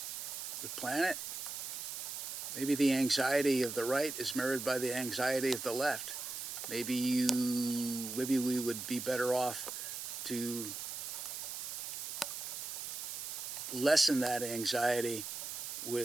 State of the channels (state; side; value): noise; right; hiss, 6 dB below the sound